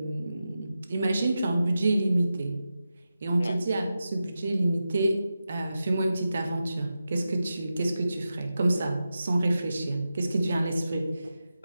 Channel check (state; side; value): inverted; both; correlation -0.91